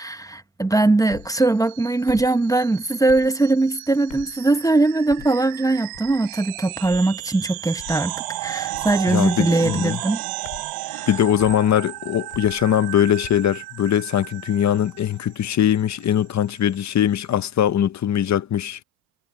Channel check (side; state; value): both; normal; correlation 0.52